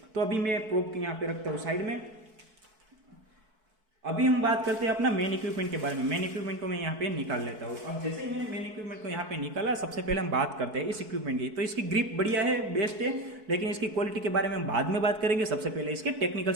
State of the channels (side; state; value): left; late; 4.6 ms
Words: तो अभी मैं प्रोब के यहाँ पे रखता हूँ साइड में। अभी हम बात करते हैं अपना मेन इक्विपमेंट के बारे में। मेन इक्विपमेंट को मैं यहाँ पे निकाल लेता हूँ। अब जैसे ही मैंने मेन इक्विपमेंट को यहाँ पे निकाला, सबसे पहले हम बात करते हैं इस इक्विपमेंट की। तो इसकी ग्रिप बढ़िया है, बेस्ट है, लेकिन इसकी क्वालिटी के बारे में हम बाद में बात करेंगे। सबसे पहले इसके टेक्निकल